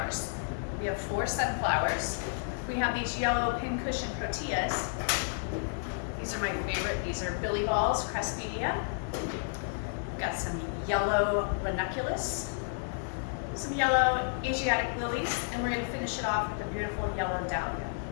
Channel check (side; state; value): right; silent; digital silence